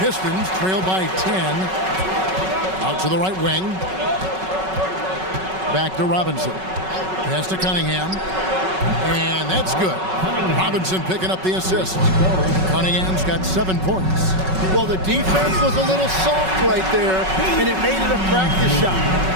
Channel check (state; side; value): late; left; 5.3 ms